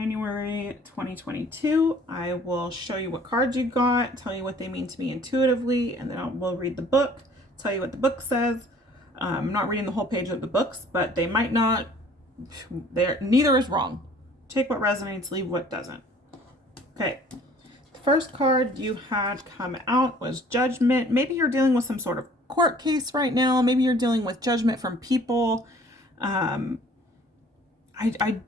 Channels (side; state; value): both; normal; correlation 0.53